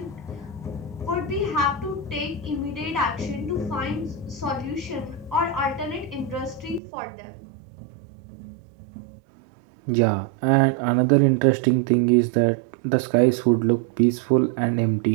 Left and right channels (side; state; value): left; drops out; at 6.8 s